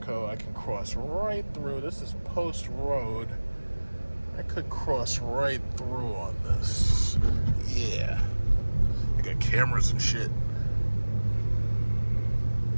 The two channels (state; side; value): inverted; both; correlation -1.00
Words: I can cross right through. This is Post Road. I could cross right through on this. Yeah. They got cameras and shit.